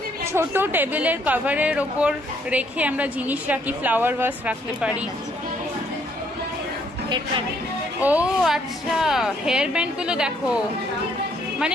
ছোট টেবিলের কভারের ওপর রেখে আমরা জিনিস রাখি, ফ্লাওয়ার ভাস রাখতে পারি। ও আচ্ছা, হেয়ার ব্যান্ডগুলো দেখো, মানে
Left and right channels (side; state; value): both; normal; correlation 0.68